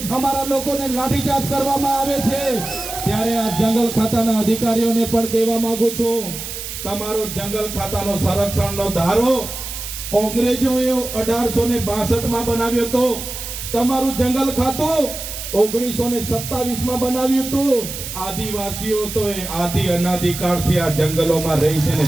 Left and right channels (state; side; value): noise; right; hiss, 8 dB below the sound